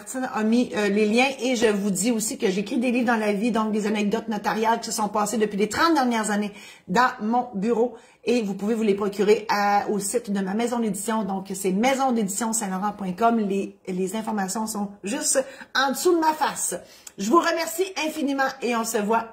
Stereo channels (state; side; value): identical; both; correlation 1.00